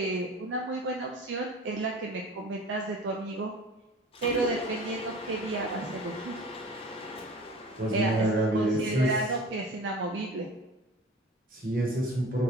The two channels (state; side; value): normal; both; correlation 0.41